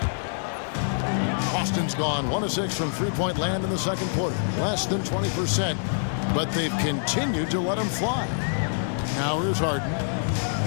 Boston's gone 1 of 6 from three-point land in the second quarter. Less than 20%, but they've continued to let him fly. Now here's Harden.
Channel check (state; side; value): silent; right; digital silence